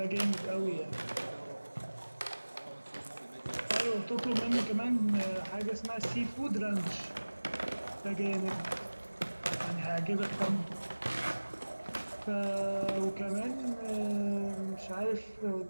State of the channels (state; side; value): inverted; both; correlation -1.00